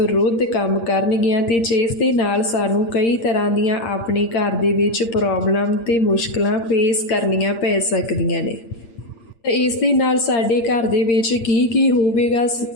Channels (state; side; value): late; right; 8.7 ms